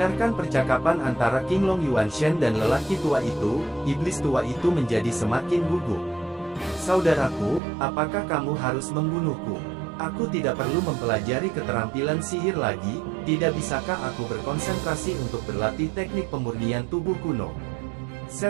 percakapan antara King Long Yuanshen dan lelaki tua itu, iblis tua itu menjadi semakin gugup. "Saudaraku, apakah kamu harus membunuhku? Aku tidak perlu mempelajari keterampilan sihir lagi, tidak bisakah aku berkonsentrasi untuk berlatih teknik pemurnian tubuh kuno?"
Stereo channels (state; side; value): drops out; left; at 7.6 s